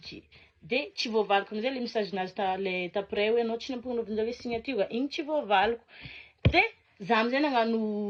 de tsy voavaliko amizay le message nazy le taprès hoe anao tsy nampanaovanjare signature igny tsy voavaliko de za amizay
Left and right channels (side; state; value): both; identical; correlation 1.00